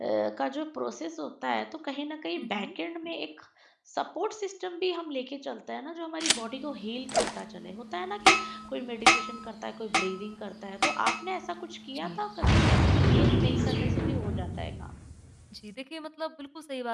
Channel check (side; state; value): both; identical; correlation 1.00